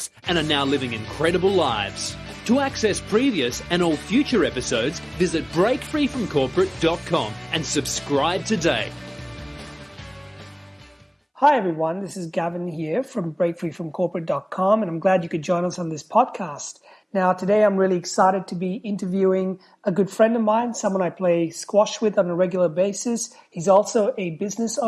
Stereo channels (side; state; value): both; identical; correlation 1.00